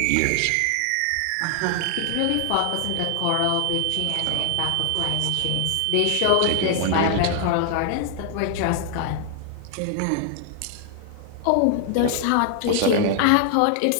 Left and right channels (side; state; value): both; different; correlation 0.00